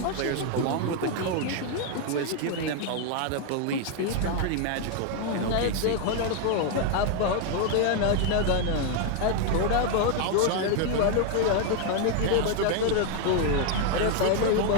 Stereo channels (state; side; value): different; both; correlation 0.01